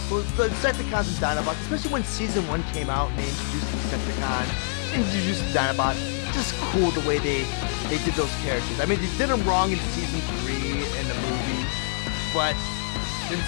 So the Insecticons and Dinobots, especially when Season 1 came out and they introduced the Insecticons, introduced the Dinobots. Just cool the way they did those characters. I mean, they did them wrong in Season 3 in the movie, but the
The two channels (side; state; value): right; silent; digital silence